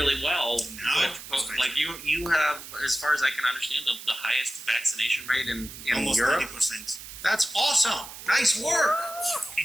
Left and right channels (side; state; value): right; noise; hiss, 13 dB below the sound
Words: well. No, like you have, as far as I can understand, the highest vaccination rate in almost Europe. 90%. That's awesome. Nice work.